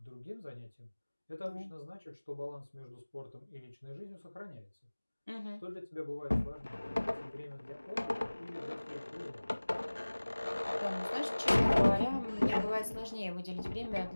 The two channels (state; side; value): inverted; both; correlation -1.00